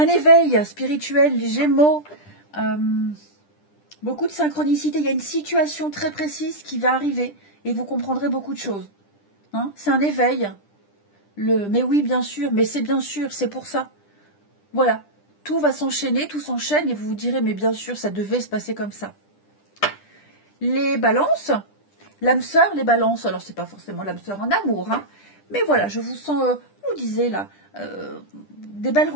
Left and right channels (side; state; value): right; late; 10 ms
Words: éveil spirituel, les Gémeaux. Beaucoup de synchronicité. Il y a une situation très précise qui va arriver et vous comprendrez beaucoup de choses. Hein, c'est un éveil. Mais oui, bien sûr, mais c'est bien sûr, c'est pour ça. Voilà. Tout va s'enchaîner, tout s'enchaîne et vous vous direz, mais bien sûr, ça devait se passer comme ça. Les balances. L'âme sœur, les balances. Alors, c'est pas forcément l'âme sœur en amour, hein. Mais voilà, je vous sens, je vous disais là, des belles